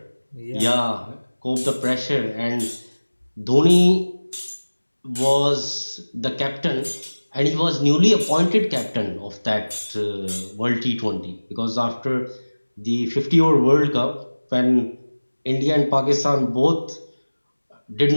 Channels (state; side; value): inverted; both; correlation -1.00